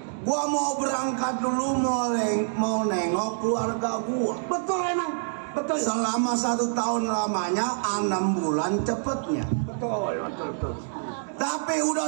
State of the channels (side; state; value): left; silent; digital silence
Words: gua mau berangkat dulu mau nengok keluarga gua. Betul emang, betul. Selama 1 tahun lamanya, 6 bulan cepetnya. Betul. Tapi udah